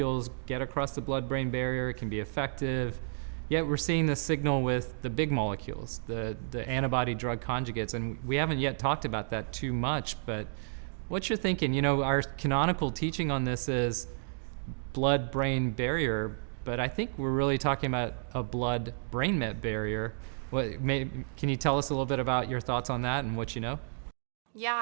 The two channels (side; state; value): left; silent; digital silence